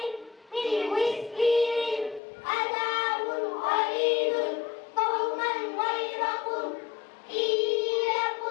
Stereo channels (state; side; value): drops out; right; at 2.2 s